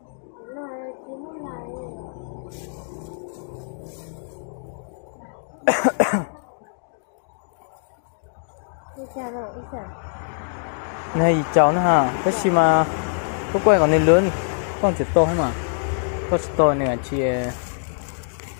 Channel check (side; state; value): right; silent; digital silence